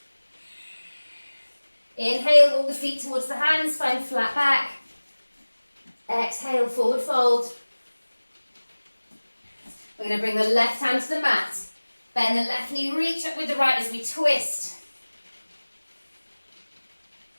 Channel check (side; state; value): both; inverted; correlation -1.00